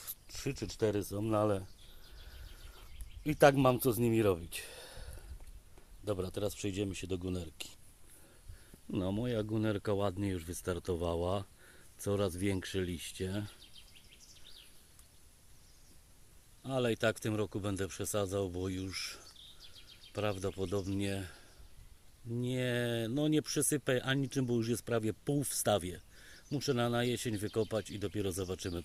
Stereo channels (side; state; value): both; identical; correlation 1.00